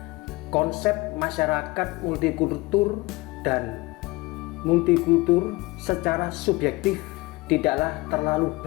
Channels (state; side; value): quieter; right; 22.4 dB